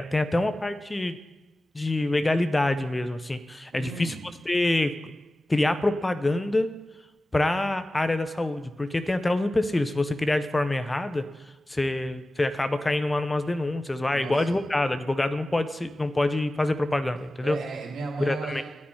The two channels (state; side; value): normal; both; correlation 0.95